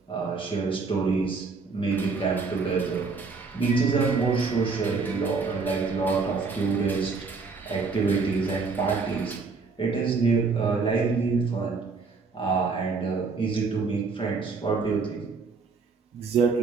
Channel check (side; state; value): left; quieter; 4.5 dB